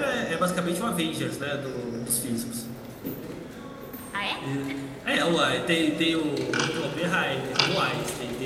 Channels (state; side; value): identical; both; correlation 1.00